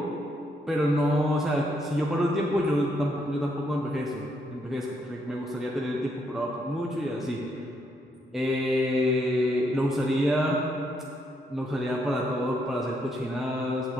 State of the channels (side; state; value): both; normal; correlation 0.75